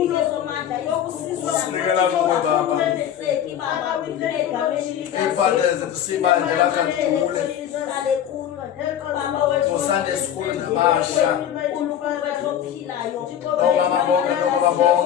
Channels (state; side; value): quieter; right; 10.1 dB